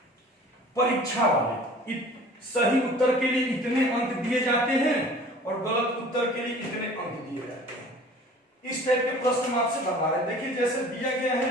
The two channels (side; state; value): both; normal; correlation 0.46